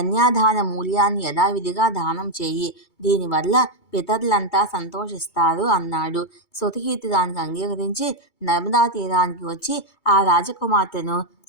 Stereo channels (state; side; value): late; right; 2.3 ms